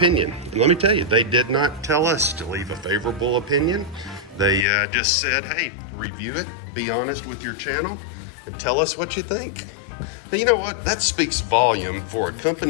And let me tell you, they did not tell us to leave a favorable opinion. They just said, hey, review it, be honest with your channel, and tell us what you think. But you know what? That speaks volume for a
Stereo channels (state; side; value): drops out; right; at 4.7 s